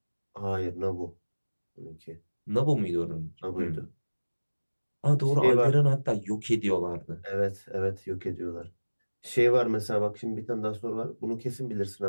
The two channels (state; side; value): inverted; both; correlation -1.00